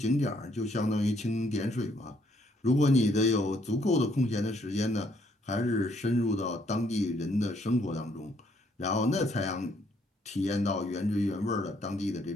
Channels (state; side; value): normal; both; correlation 0.69